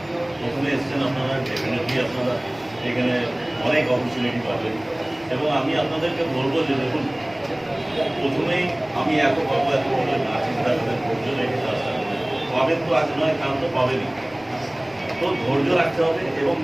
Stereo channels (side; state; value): left; noise; rumble, 27 dB below the sound